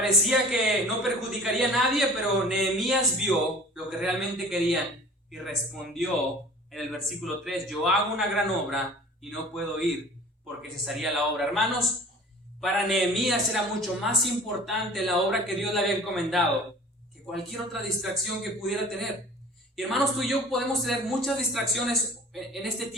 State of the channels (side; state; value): both; normal; correlation 0.45